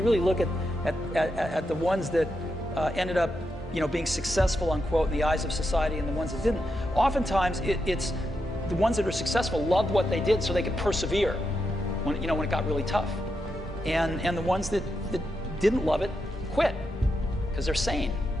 really look at the ones that ended up being successful, unquote, in the eyes of society, and the ones that didn't. Oftentimes, it's the ones that are successful loved what they did so they could persevere when it got really tough. And the ones that didn't love it quit because they're sane,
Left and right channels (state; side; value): normal; both; correlation 0.85